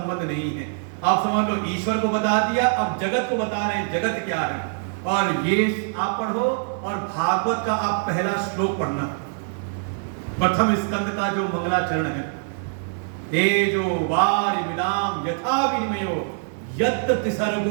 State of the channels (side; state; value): left; silent; digital silence